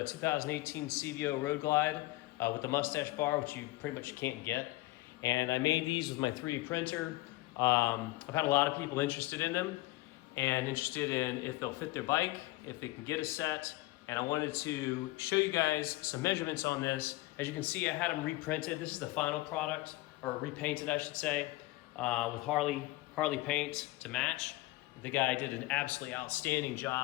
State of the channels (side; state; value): right; quieter; 19.5 dB